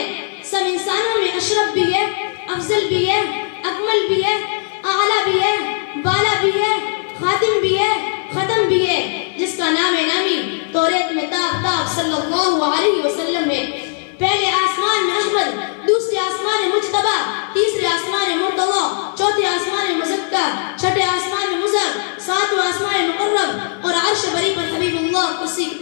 سب انسانوں میں اشرف بھی ہے، افضل بھی ہے، اکمل بھی ہے، اعلیٰ بھی ہے، بالا بھی ہے، خاتم بھی ہے، ختم بھی ہے، جس کا نام نامی توریت میں تاب صلی اللہ علیہ وسلم ہے. پہلے آسمان میں احمد، دوسرے آسمان مجتبی، تیسرے آسمان مرتضی، چوتھے آسمان مزکا، چھٹے آسمان مزر، ساتویں آسمان مقرب، اور عرش بری پر حبیب اللہ، کرسی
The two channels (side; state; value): right; silent; digital silence